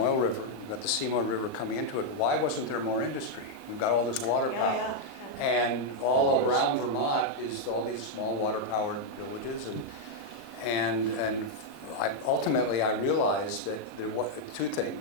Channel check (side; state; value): right; late; 38 ms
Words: River, you've got the Seymour River coming into it. Why wasn't there more industry? You've got all this water Oh, power. yeah. And all around Vermont is all these small water-powered villages, and ultimately I realized that there were 2